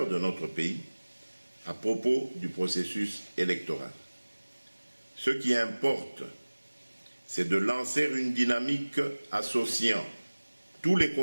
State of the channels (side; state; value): both; inverted; correlation -1.00